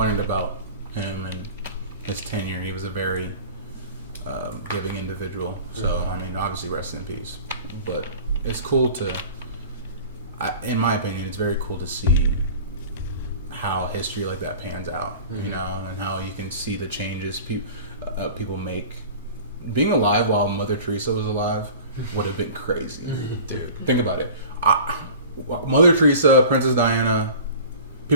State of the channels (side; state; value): both; inverted; correlation -0.41